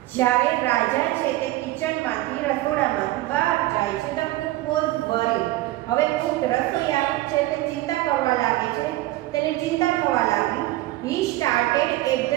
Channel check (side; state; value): left; quieter; 17.2 dB